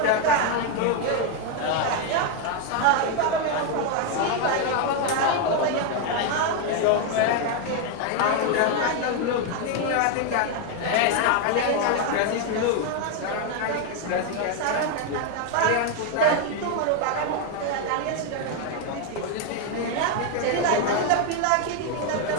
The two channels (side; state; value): both; different; correlation 0.01